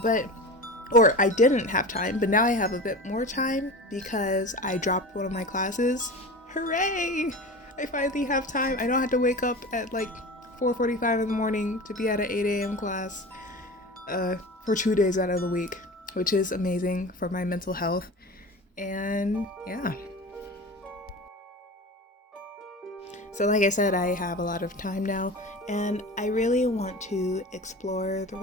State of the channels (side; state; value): both; normal; correlation 0.32